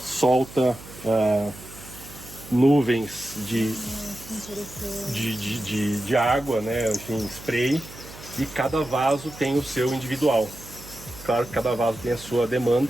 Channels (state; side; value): noise; right; hum, 17 dB below the sound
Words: solta nuvens de água, né? Enfim, spray, e cada vaso tem o seu individual. Claro que cada vaso tem a sua